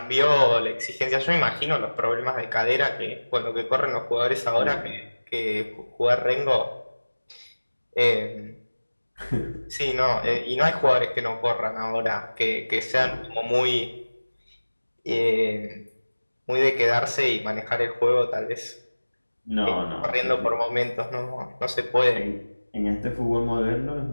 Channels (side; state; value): both; inverted; correlation -1.00